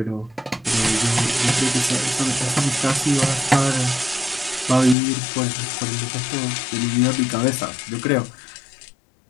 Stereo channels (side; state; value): right; drops out; at 5.0 s